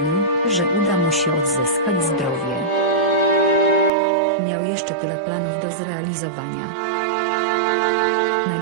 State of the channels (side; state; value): left; drops out; at 3.9 s